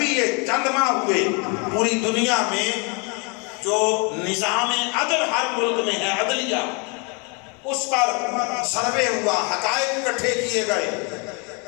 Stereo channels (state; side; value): quieter; right; 33.0 dB